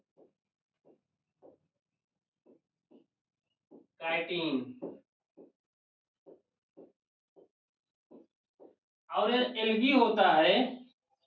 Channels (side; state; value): both; identical; correlation 1.00